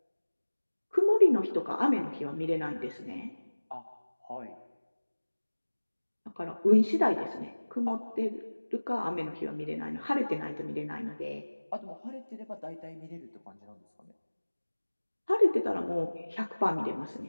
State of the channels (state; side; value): inverted; both; correlation -1.00